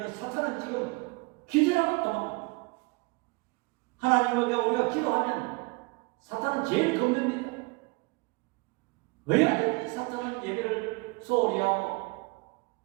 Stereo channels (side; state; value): left; quieter; 27.2 dB